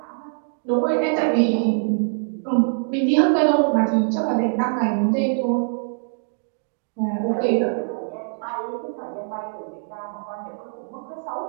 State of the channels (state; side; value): silent; left; digital silence